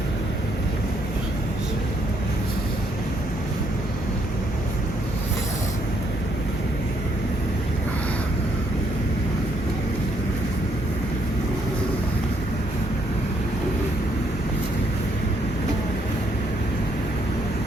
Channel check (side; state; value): both; normal; correlation 0.72